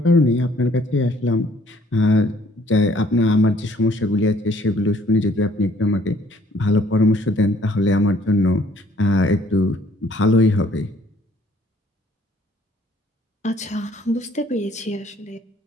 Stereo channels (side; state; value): both; normal; correlation 0.61